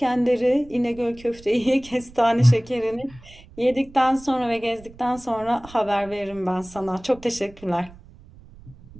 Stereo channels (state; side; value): noise; right; rumble, 21 dB below the sound